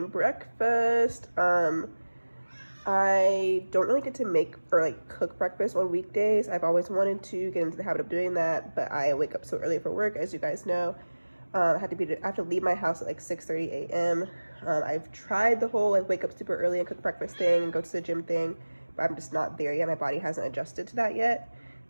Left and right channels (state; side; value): inverted; both; correlation -1.00